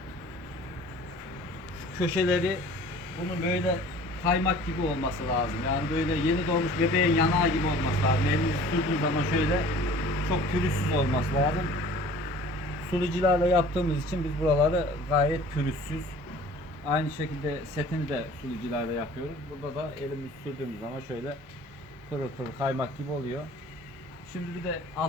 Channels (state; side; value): normal; both; correlation 0.47